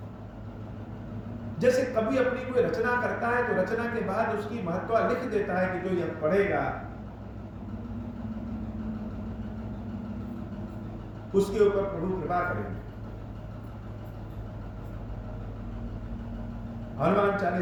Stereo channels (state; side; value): identical; both; correlation 1.00